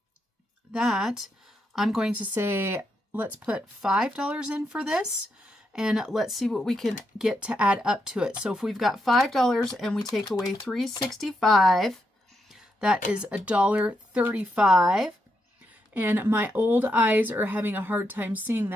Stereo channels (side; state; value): both; normal; correlation 0.81